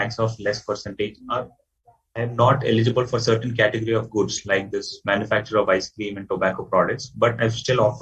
of less percentage, or I am not eligible for certain category of goods like this manufacture of ice cream and tobacco products, but I still opt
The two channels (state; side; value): identical; both; correlation 1.00